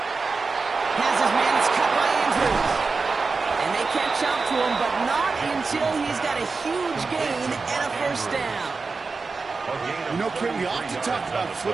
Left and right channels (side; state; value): left; quieter; 4.3 dB